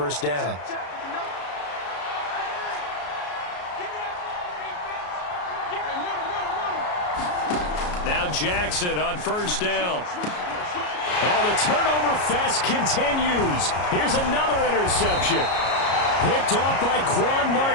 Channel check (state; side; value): late; right; 33 ms